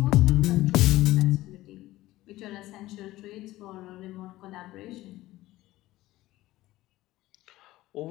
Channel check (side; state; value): right; quieter; 16.8 dB